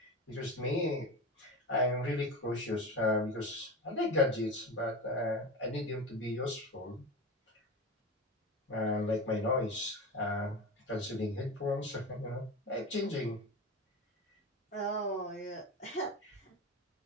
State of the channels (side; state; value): both; normal; correlation 0.25